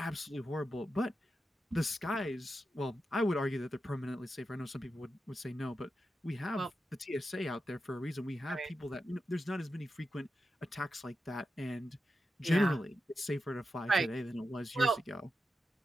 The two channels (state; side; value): normal; both; correlation 0.89